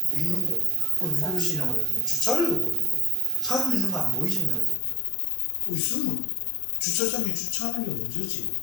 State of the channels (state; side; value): drops out; right; at 4.8 s